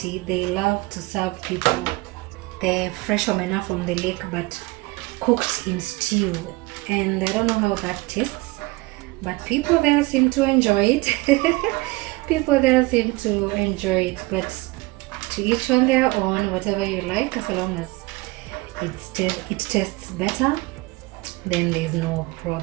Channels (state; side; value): quieter; left; 22.9 dB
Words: they love to serve people the fresh omena from the lake but cooked in stew, and I don't know how that tastes, but people there seem to enjoy it. People there seem to enjoy it, but to each on their own, whatever you like, as long as it tastes better, then there's no